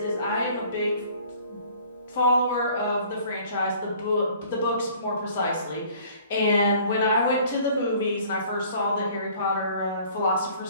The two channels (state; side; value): inverted; both; correlation -0.53